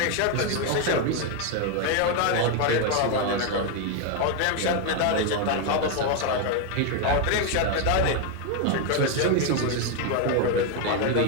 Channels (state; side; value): different; both; correlation 0.01